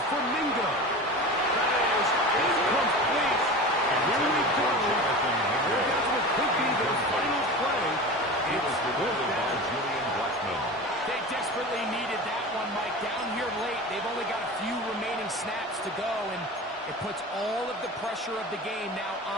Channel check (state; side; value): normal; both; correlation 0.32